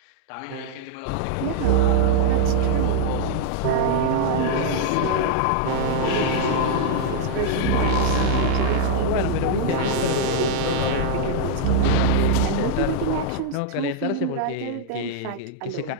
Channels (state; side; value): different; both; correlation -0.01